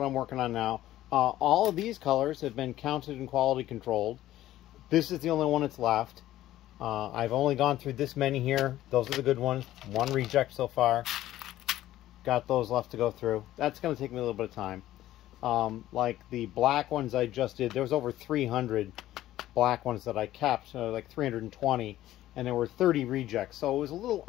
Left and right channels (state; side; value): quieter; right; 14.2 dB